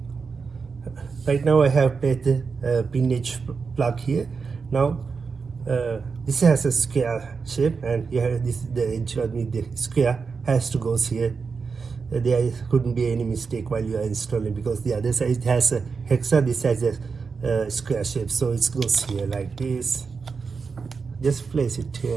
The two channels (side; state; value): left; quieter; 5.1 dB